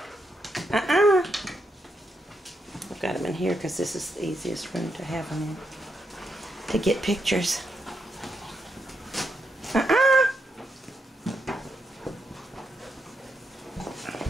I've got them in here because this is the easiest room to have them in. To get pictures.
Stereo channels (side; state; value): both; normal; correlation 0.81